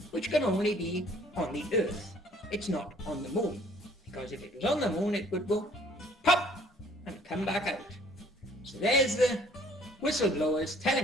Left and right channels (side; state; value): both; normal; correlation 0.58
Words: which can only be on the Earth. It's not on the moon, because if it was on the moon, it would go pop and come back out. So there's the whistleblowers